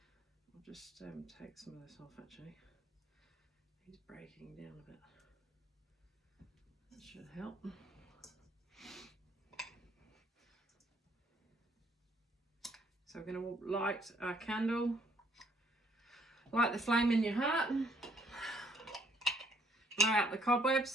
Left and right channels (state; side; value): normal; both; correlation 0.66